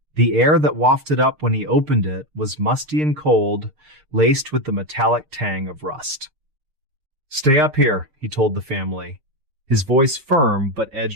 The air that wafted up when he opened it was musty and cold, laced with the metallic tang of rust. "Stay up here," he told the family, his voice firm but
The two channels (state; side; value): late; left; 6.6 ms